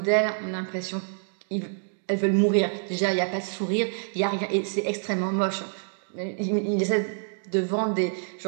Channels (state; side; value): silent; left; digital silence